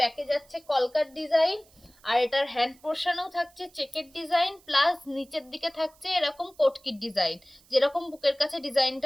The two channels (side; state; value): right; noise; hiss, 29 dB below the sound